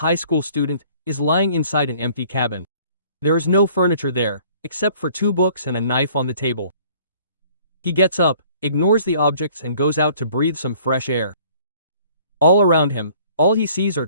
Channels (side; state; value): both; inverted; correlation -0.55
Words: high school student, is lying inside an empty cabin. There is no furniture there, except for 2 books and a knife on the table. He gets up, ignores the objects and goes out to breathe some fresh air. All around him, all he sees are